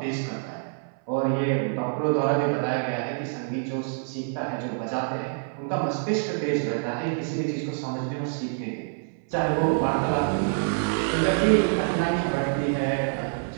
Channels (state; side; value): silent; left; 61 dB below the other